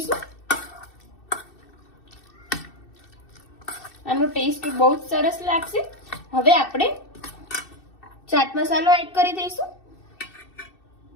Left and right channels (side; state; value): right; late; 2.6 ms